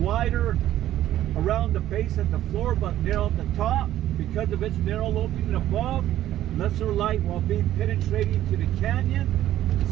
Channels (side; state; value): left; quieter; 13.0 dB